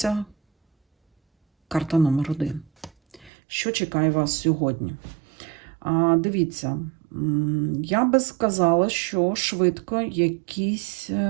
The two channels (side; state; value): left; drops out; at 3.3 s